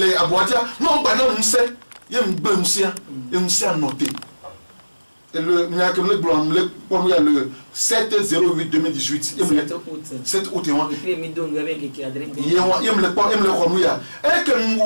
aboatia no gba na musa ye mgbe musa noté et le le 7/08/2018 7 août et me que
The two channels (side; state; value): both; inverted; correlation -1.00